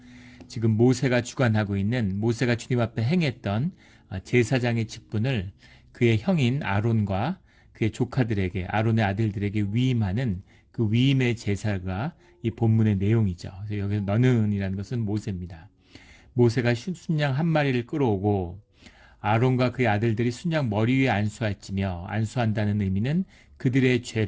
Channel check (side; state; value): both; identical; correlation 1.00